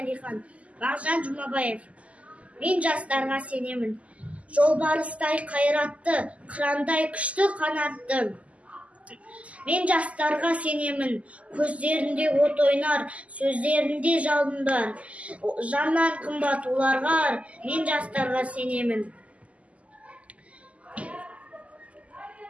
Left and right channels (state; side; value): late; left; 0.067 ms